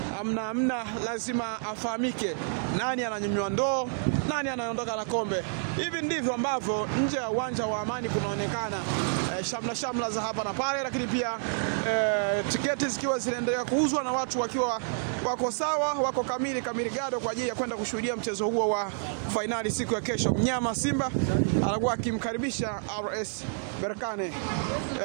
amna lazima afahamike nani ananyanyua ndoo, nani anaondoka na kombe. Hivi ndivyo ambavyo nje ya uwanja wa Amani kunaonekana shamla za hapa na pale, lakini pia tiketi zikiwa zinaendelea kuuzwa na watu wakiwa wako sawa, wako kamili gado kwa ajili ya kwenda kushuhudia mchezo huo wa finali siku ya kesho. Mnyama Simba anakuwa akimkaribisha RS Berkane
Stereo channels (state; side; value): silent; left; digital silence